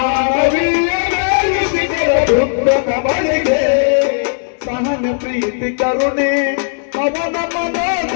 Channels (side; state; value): right; silent; digital silence